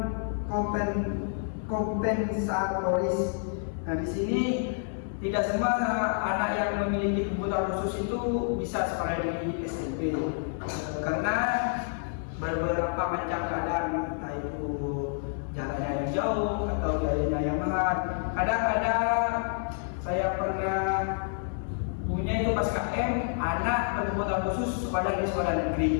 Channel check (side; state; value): right; silent; 59 dB below the other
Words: kompensatoris. Nah, di sini tidak semua anak yang memiliki kebutuhan khusus itu bisa sekolah di SMP, karena beberapa macam keadaan, entah itu jalannya yang jauh atau biayanya yang mahal. Kadang-kadang saya pernah punya itu pas KM, anak berkebutuhan khusus sekolah di sekolah